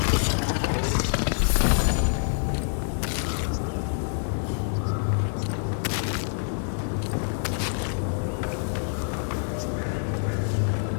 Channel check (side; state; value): right; silent; digital silence